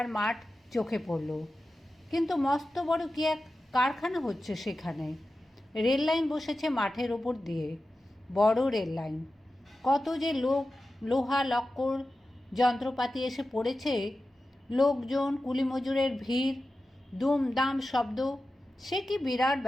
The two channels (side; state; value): both; normal; correlation 0.93